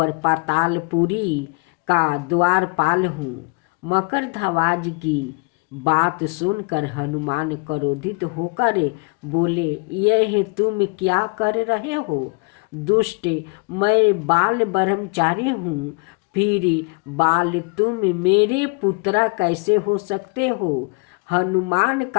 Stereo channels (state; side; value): quieter; right; 32.5 dB